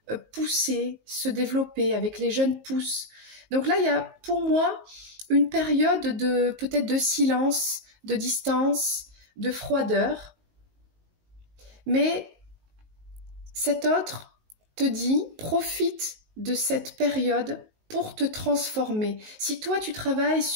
pousser, se développer avec les jeunes pousses. Donc là, il y a pour moi une période peut-être de silence, de distance, de froideur. Mais cet autre te dit, profite de cette période pour te transformer. Si toi, tu travailles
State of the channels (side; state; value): left; late; 19 ms